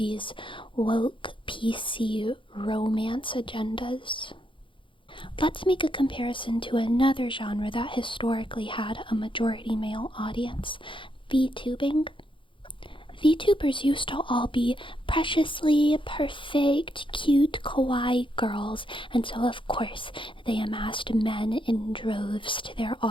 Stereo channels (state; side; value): late; right; 0.25 ms